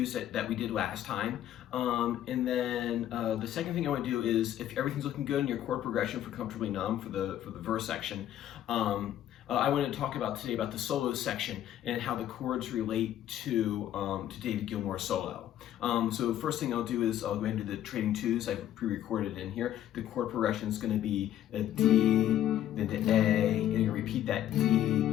that we did last time, and then the second thing I want to do is if everything's looking good in your chord progression for Comfortably Numb for the verse section. I want to talk about today about the solo section and how the chords relate to David Gilmour's solo. So first thing I'll do is I'll go ahead and do the trading twos. I've pre-recorded in here. The chord progression is going to be a D, then to A, and you're going to repeat that D,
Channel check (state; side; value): quieter; right; 11.7 dB